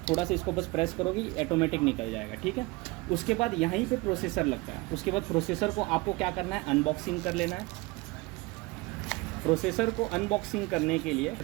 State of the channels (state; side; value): quieter; left; 23.6 dB